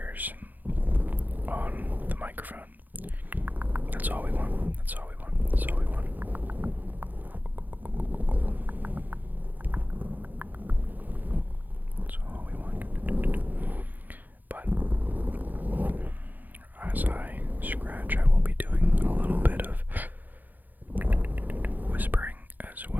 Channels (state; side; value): late; left; 0.084 ms